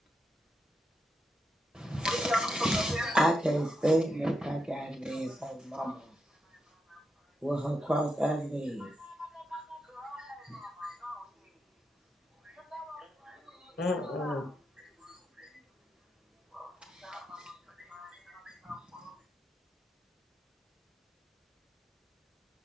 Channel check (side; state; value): both; normal; correlation 0.84